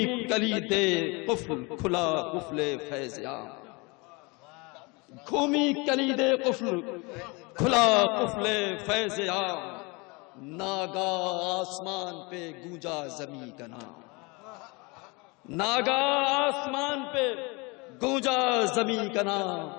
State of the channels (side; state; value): right; quieter; 27.8 dB